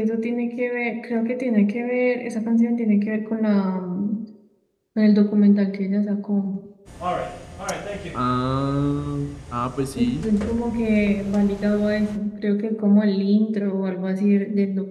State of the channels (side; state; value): both; identical; correlation 1.00